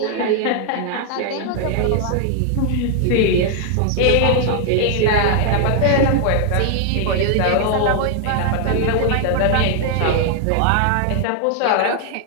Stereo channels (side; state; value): both; different; correlation 0.00